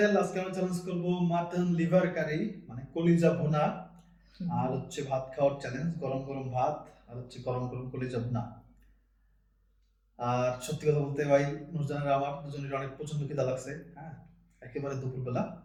আজকে আমরা চ্যালেঞ্জ করব মাটন লিভার কারি, মানে কলিজা ভুনা। আর হচ্ছে ভাত খাওয়ার চ্যালেঞ্জ, গরম গরম ভাত আর হচ্ছে গরম গরম কলিজা ভুনা। আর সত্যি কথা বলতে ভাই, নুরজানের আমার দুজনের অনেক প্রচন্ড খিদা লাগছে। হ্যাঁ, একেবারে দুপুরবেলা।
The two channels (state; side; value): identical; both; correlation 1.00